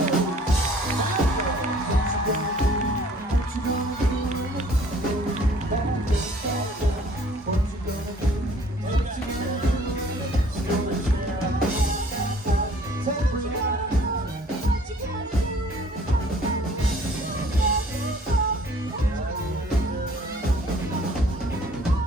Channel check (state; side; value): normal; both; correlation 0.55